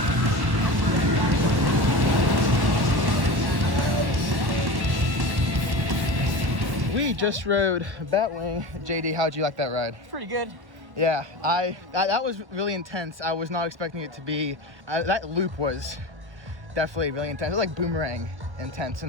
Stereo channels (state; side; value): late; left; 1.1 ms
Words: We just rode Batwing. JD, how'd you like that ride? Pretty good. Yeah, that was really intense. I was not expecting it to be. That loop was definitely really intense. It was like Boomerang intense